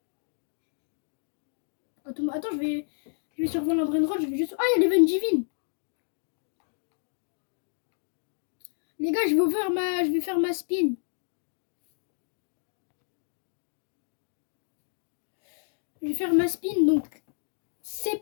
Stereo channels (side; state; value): right; silent; digital silence